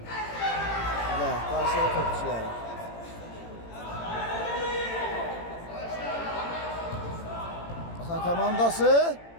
Və qarşıya topçuları. Balxan komandası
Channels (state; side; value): late; right; 18 ms